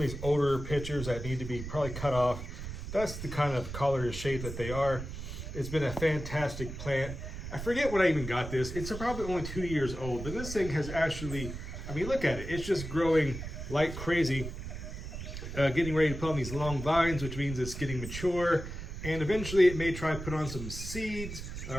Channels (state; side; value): noise; right; rumble, 8 dB below the sound